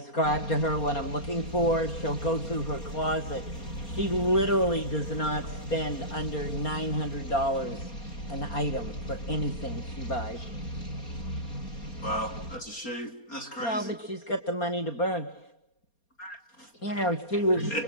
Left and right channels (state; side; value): late; right; 4.3 ms